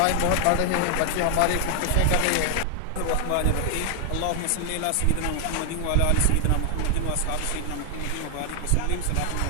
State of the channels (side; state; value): both; different; correlation 0.00